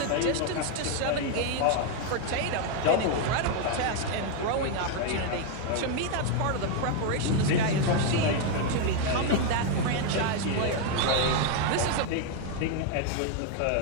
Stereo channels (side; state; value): both; different; correlation 0.01